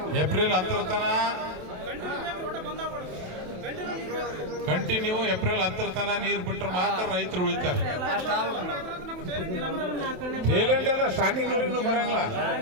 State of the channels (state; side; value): late; left; 27 ms